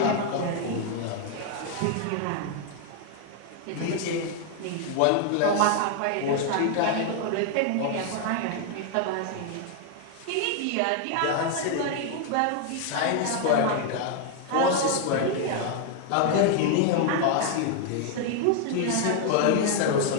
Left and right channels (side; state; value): both; different; correlation 0.00